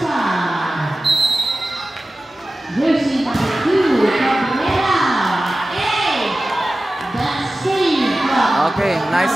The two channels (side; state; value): both; normal; correlation 0.95